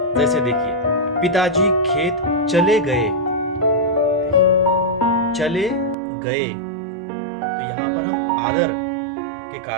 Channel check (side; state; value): left; drops out; at 6.0 s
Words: जैसे देखिए, पिताजी खेत चले गए, चले गए, तो यहां पर हम आदर के